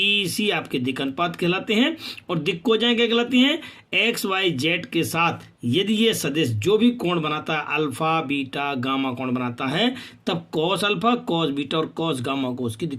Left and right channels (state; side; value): identical; both; correlation 1.00